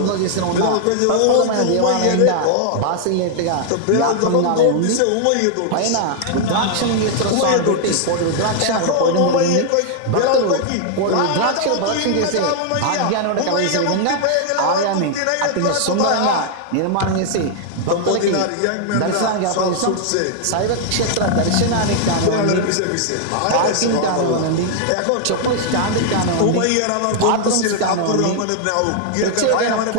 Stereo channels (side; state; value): both; different; correlation 0.00